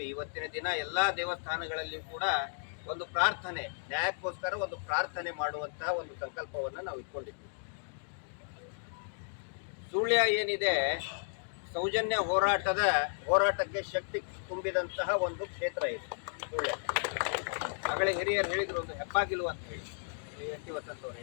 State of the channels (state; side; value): silent; right; digital silence